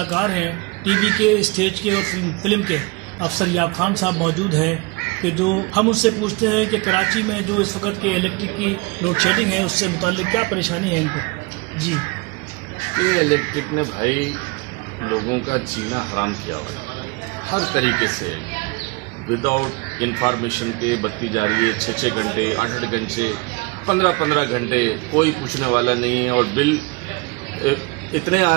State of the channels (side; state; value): left; quieter; 26.6 dB